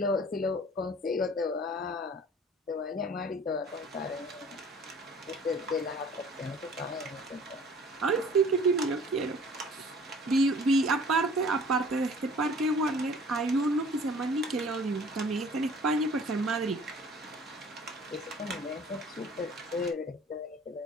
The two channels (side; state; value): both; normal; correlation 0.50